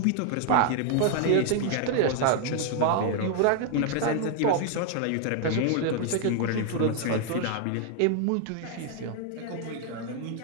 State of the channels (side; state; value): both; different; correlation 0.00